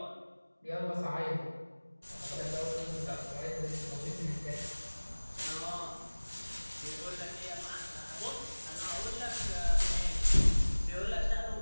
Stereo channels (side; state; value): both; inverted; correlation -1.00